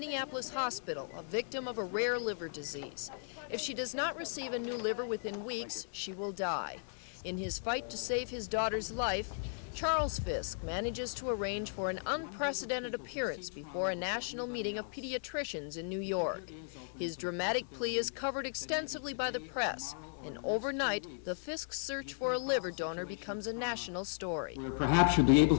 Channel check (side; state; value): right; silent; digital silence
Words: hospital, a victim of a rare liver disease. If she does not receive a new liver within weeks, she will die. In his fight to save his daughter's life, Charles Fisk manages to arrange for an unprecedented appearance before a national meeting of pediatricians in New York. His dramatic plea is covered extensively by the press, and overnight, the Fisk search for a liver donor becomes a national story. Perhaps you'll be able